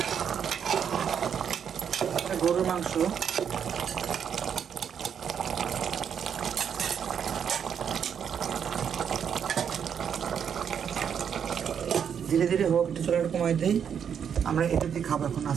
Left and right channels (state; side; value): quieter; left; 7.9 dB